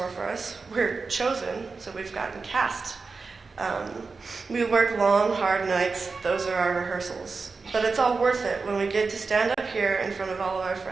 for us. We're chosen, so we've gotten cast. We work long, hard nights. Those are our rehearsals. But it's all worth it when we get to stand up here in front of all of our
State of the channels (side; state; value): left; quieter; 4.4 dB